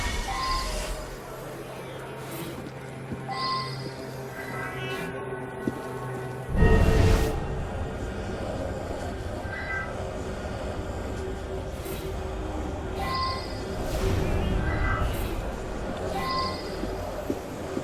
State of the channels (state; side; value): identical; both; correlation 1.00